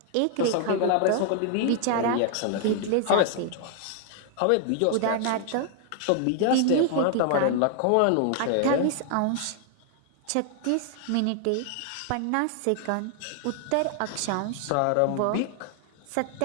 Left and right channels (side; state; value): both; different; correlation 0.00